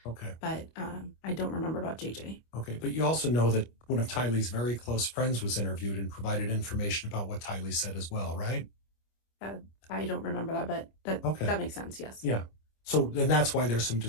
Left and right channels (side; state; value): right; late; 25 ms